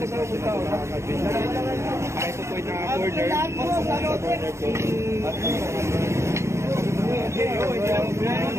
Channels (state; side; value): late; left; 0.13 ms